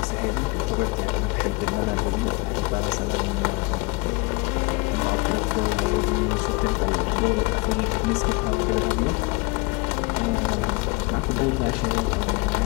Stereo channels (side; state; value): right; quieter; 26.7 dB